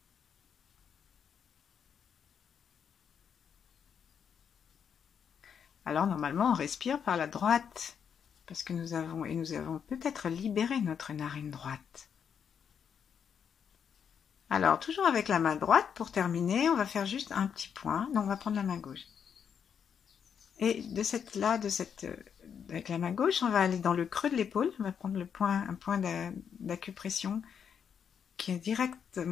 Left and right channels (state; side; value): quieter; right; 7.5 dB